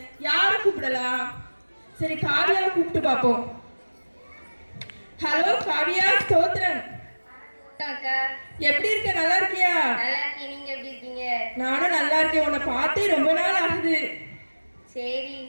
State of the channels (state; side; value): inverted; both; correlation -1.00